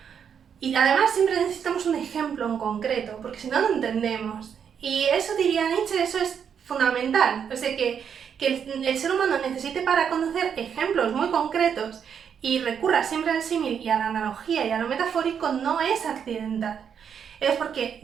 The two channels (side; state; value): left; quieter; 7.6 dB